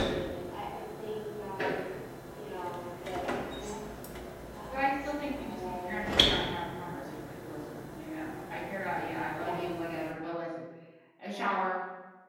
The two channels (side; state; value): both; identical; correlation 1.00